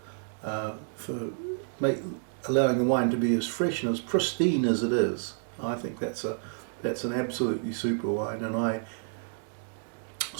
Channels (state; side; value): silent; left; digital silence